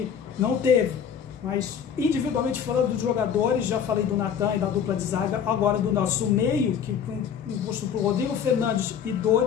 não teve. Mas individualmente falando dos jogadores, já falei do Natan e da dupla de zaga, agora do nosso meio, que foi imposto por Rodrigo Fernandes e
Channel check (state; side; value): quieter; right; 7.9 dB